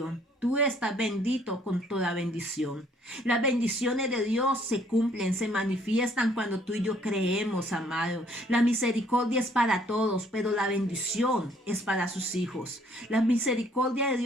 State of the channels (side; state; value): both; normal; correlation 0.62